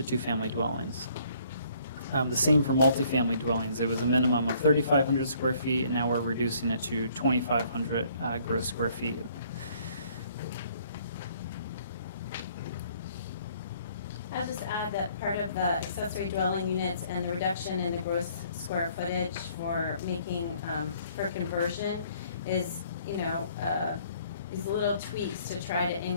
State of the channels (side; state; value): both; inverted; correlation -0.62